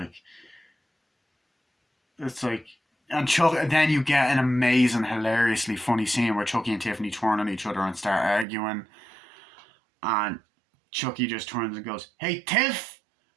it's like, and then you get an amazing, hilariously funny scene where Chucky and Tiffany turn on each other and start arguing, and Chucky just turns and goes, hey, Tiff,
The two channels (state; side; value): drops out; left; at 8.5 s